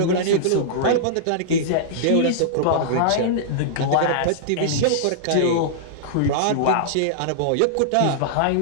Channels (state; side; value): different; both; correlation -0.02